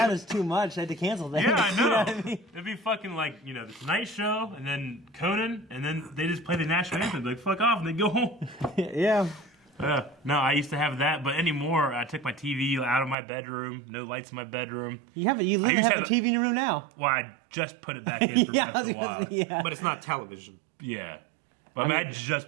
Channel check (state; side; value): drops out; left; at 13.2 s